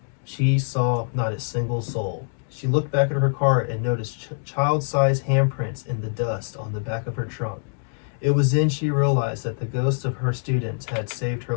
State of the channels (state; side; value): silent; right; digital silence